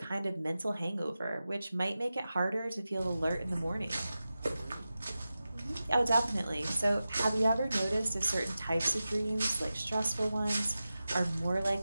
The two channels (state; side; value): inverted; both; correlation -0.94